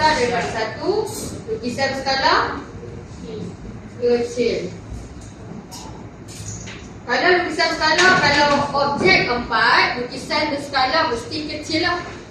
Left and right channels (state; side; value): identical; both; correlation 1.00